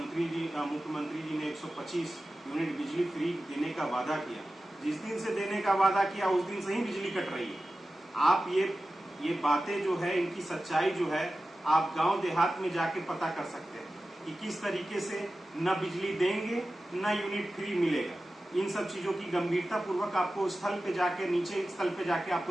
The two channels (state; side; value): normal; both; correlation 0.94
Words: जी ने 125 यूनिट बिजली फ्री देने का वादा किया, जिस दिन से देने का वादा किया उस दिन से ही बिजली कट रही है। आप ये बातें जो है, इनकी सच्चाई जो है, आप गांव देहात में जाके पता कर सकते हैं। कि किस तरीके से न बिजली देंगे न यूनिट फ्री मिलेगा। इन सब चीजों की गंभीरता पूर्वक आपको स्थल पे जाके, नीचे स्थल पे जाके